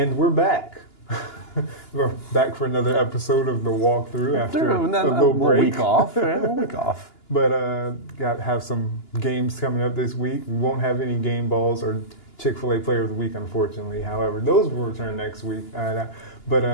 we're back. We're back for another episode of the walkthrough after a little break. Week off. Yeah, a week off. But have some games coming up this week. We won't have any game balls or Chick-fil-A Player of the Week, unfortunately. However, those will return next week.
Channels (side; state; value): right; late; 2.9 ms